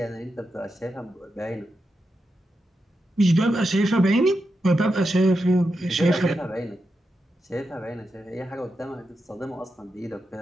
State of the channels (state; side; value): normal; both; correlation 0.87